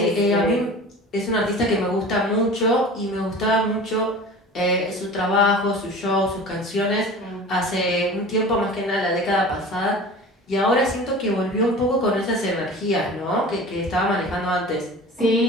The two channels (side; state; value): both; normal; correlation 0.38